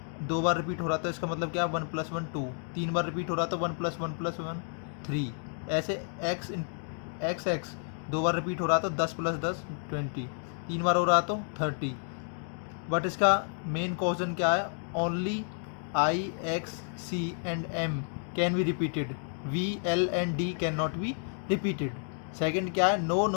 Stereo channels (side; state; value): right; silent; 57 dB below the other